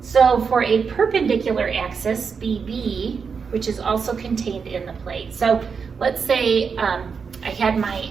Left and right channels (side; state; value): left; quieter; 5.8 dB